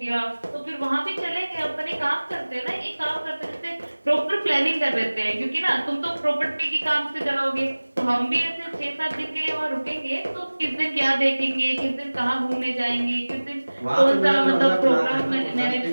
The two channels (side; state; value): both; inverted; correlation -1.00